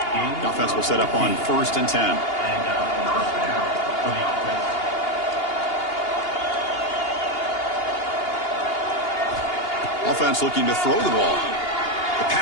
The offense will set up on 1st and 10. Offense looking to throw the ball. The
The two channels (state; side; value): late; right; 2.8 ms